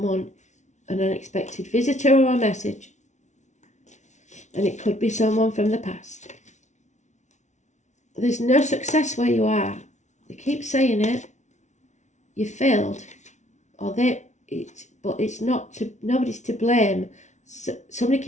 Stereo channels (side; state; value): right; late; 0.34 ms